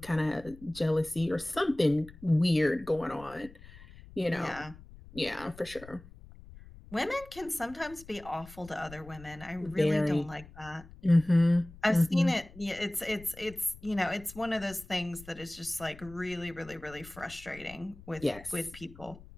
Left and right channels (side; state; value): left; noise; rumble, 19 dB below the sound